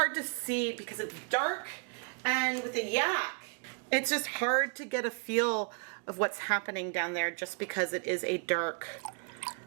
to see because it's dark, and with the yak, it's just hard to get a feel of what's happening down there just because it is a dark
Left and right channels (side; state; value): left; quieter; 39.1 dB